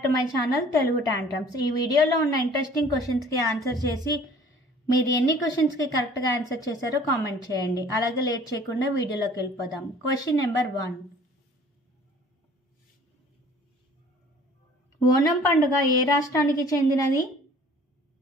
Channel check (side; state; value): both; normal; correlation 0.51